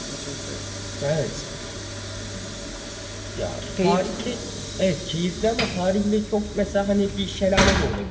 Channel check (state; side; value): identical; both; correlation 1.00